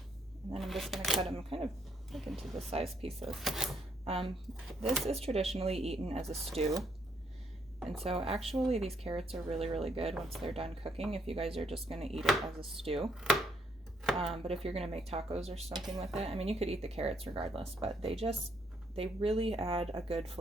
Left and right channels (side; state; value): both; normal; correlation 0.72